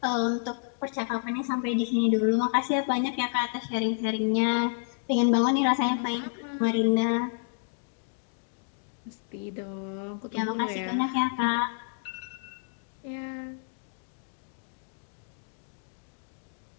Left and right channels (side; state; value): right; silent; digital silence